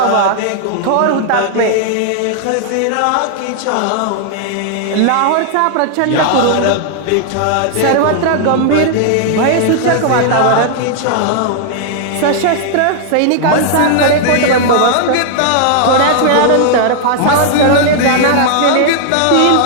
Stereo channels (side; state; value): both; different; correlation -0.01